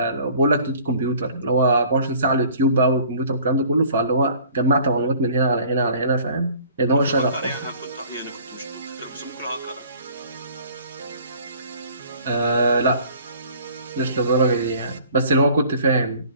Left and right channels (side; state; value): both; inverted; correlation -0.52